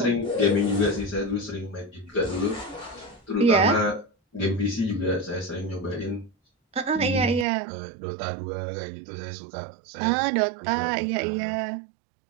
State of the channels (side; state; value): left; drops out; at 7.5 s